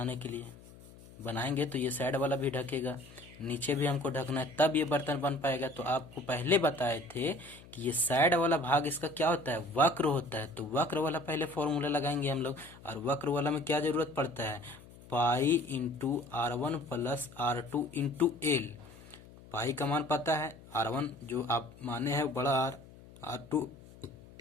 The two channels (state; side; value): noise; left; hum, 20 dB below the sound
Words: के लिए। बनाएंगे तो ये साइड वाला भी ढकेगा, नीचे भी हमको ढकना है, तब ये बर्तन बन पाएगा। तो आपको पहले बताए थे कि ये साइड वाला भाग इसका क्या होता है, वक्र होता है। तो वक्र वाला पहले फॉर्मूला लगाएंगे हम लोग। और वक्र वाला में क्या जरूरत पड़ता है, pi into R1 plus R2 into L. Pi का मान पता है, R1 जो आप माने हैं बड़ा आर, R2